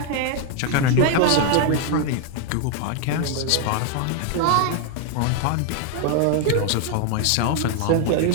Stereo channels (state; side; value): different; both; correlation 0.00